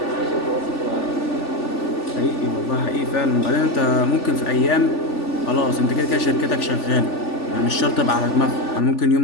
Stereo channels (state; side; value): late; right; 3.4 ms